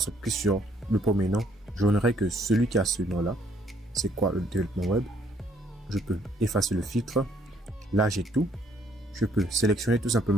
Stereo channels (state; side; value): normal; both; correlation 0.66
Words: je clique sur le premier nom, je n'aurai que celui qui a ce nom-là. C'est quoi le développement web? Je peux effacer le filtre. Là, j'ai tout. Je peux sélectionner tout